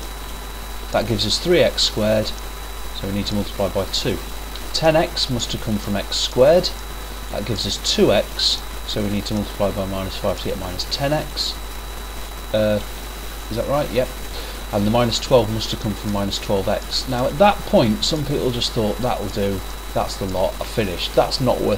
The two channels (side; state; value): both; identical; correlation 1.00